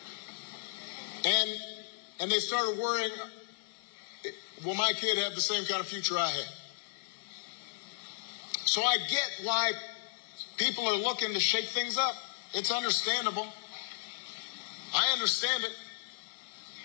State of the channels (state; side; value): silent; right; digital silence